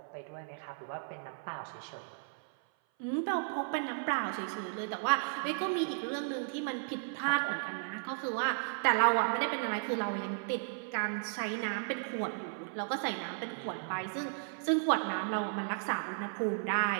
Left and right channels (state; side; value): silent; left; 55 dB below the other